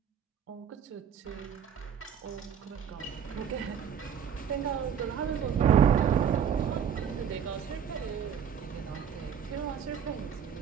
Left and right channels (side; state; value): left; quieter; 8.1 dB